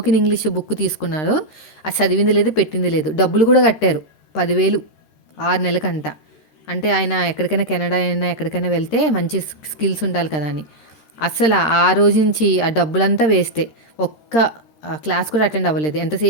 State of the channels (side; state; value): right; late; 13 ms